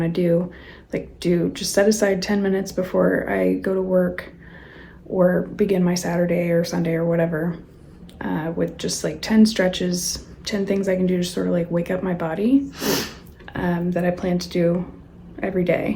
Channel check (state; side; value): identical; both; correlation 1.00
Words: to do. Like just set aside 10 minutes before I go to work or begin my Saturday or Sunday or whatever, with just like 10 stretches, 10 things I can do to sort of like wake up my body, that I plan to do every day.